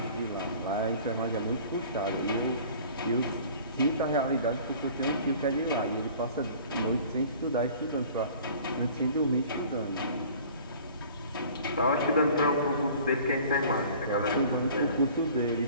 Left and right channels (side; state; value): both; inverted; correlation -0.47